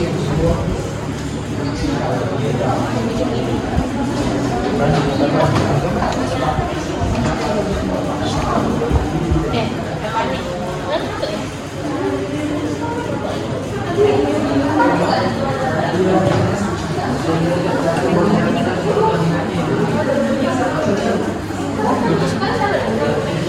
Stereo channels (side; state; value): both; identical; correlation 1.00